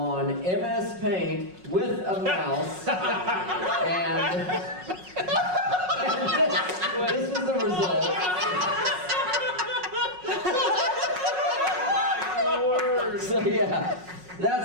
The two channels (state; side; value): late; left; 5.4 ms